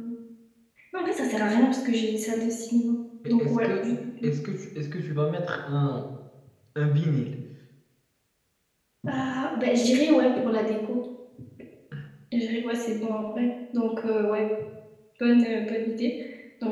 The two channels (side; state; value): both; identical; correlation 1.00